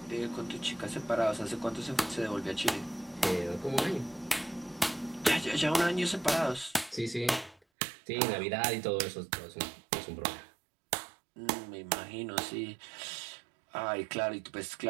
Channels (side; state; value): left; drops out; at 7.6 s